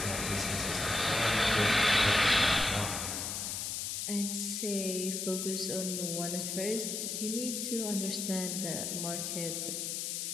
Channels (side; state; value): left; noise; hiss, 3 dB below the sound